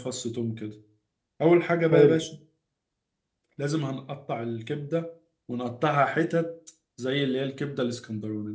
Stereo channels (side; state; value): both; identical; correlation 1.00